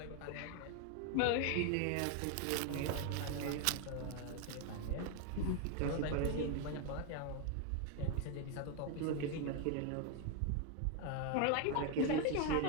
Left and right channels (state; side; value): different; both; correlation 0.01